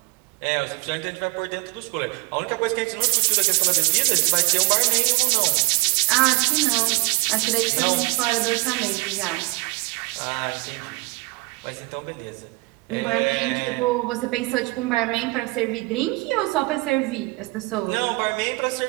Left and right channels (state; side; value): quieter; left; 25.0 dB